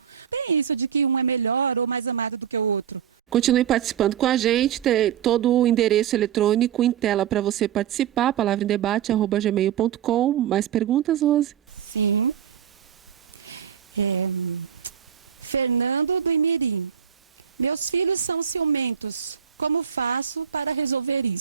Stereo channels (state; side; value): quieter; left; 8.7 dB